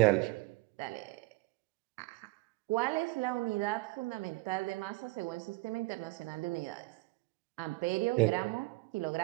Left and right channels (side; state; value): left; quieter; 23.0 dB